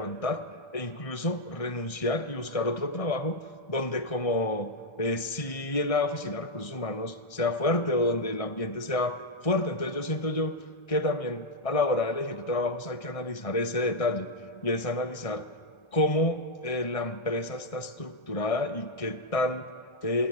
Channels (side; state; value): right; late; 1.6 ms